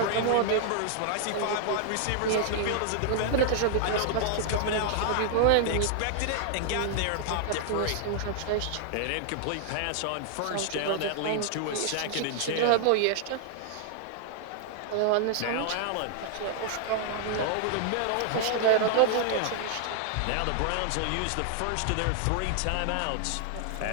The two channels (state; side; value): different; both; correlation 0.00